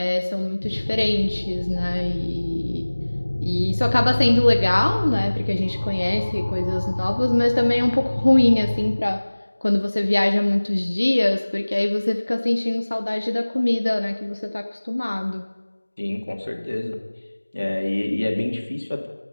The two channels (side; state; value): both; inverted; correlation -1.00